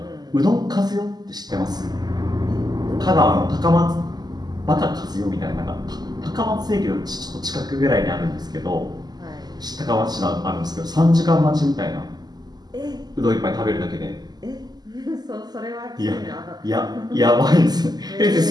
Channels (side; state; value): left; late; 0.20 ms